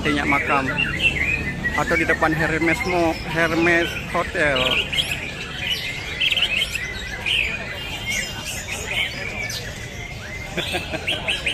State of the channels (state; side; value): identical; both; correlation 1.00